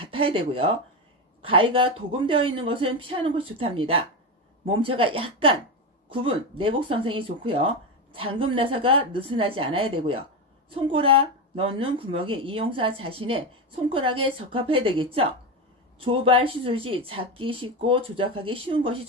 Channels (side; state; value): both; normal; correlation 0.15